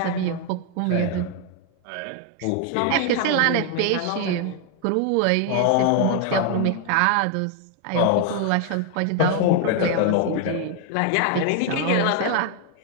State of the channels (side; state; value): both; different; correlation 0.00